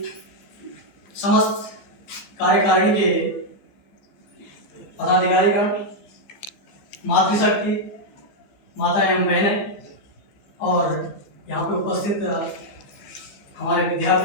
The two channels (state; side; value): late; right; 15 ms